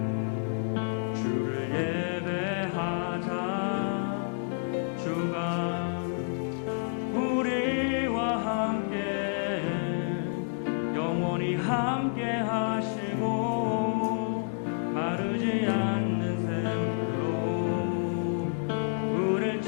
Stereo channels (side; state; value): right; silent; 58 dB below the other